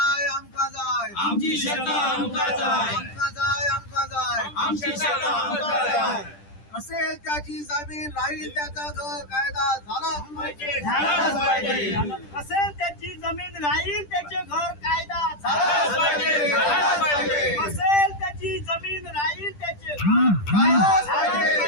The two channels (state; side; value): late; right; 10 ms